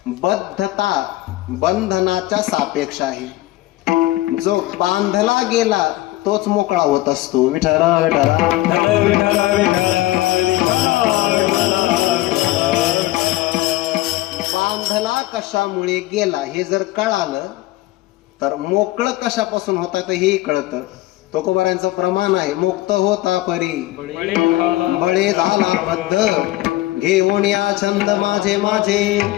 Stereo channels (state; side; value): quieter; right; 17.7 dB